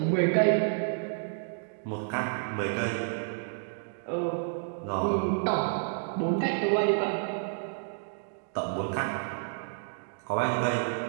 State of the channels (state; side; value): silent; left; digital silence